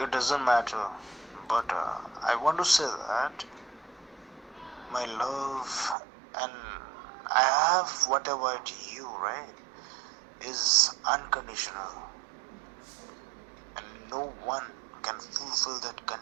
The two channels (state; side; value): drops out; left; at 6.0 s